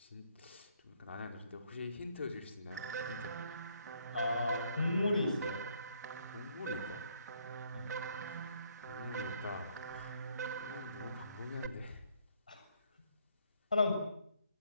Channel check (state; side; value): inverted; both; correlation -0.67